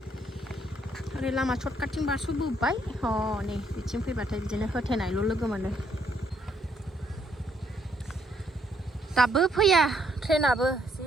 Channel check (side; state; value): both; normal; correlation 0.70